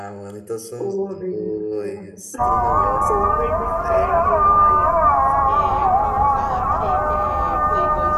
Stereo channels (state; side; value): identical; both; correlation 1.00